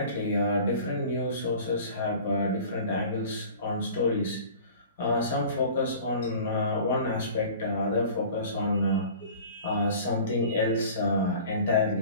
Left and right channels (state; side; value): inverted; both; correlation -0.43